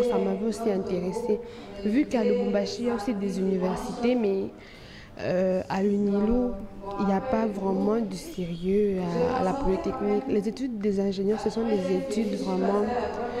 ça m'avait aussi intéressée. Vu qu'à Lubumbashi, il y a aussi des universités, mais à l'UNILO, il n'y a pas vraiment du sérieux à la polytechnique. Les études des ingénieurs, ce sont des études vraiment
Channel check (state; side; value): identical; both; correlation 1.00